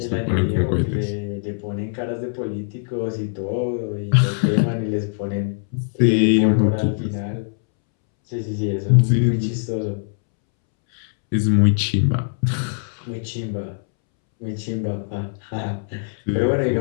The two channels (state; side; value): silent; right; 64 dB below the other